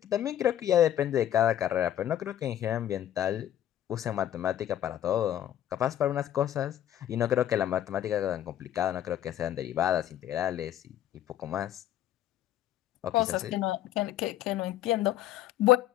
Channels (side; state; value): right; quieter; 11.6 dB